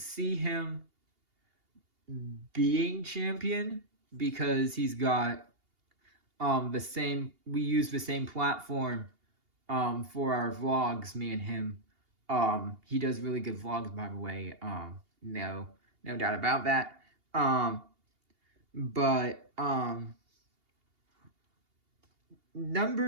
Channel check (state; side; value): late; left; 2.8 ms